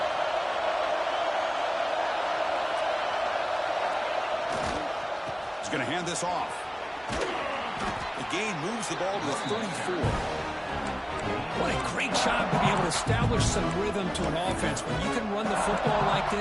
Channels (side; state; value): both; identical; correlation 1.00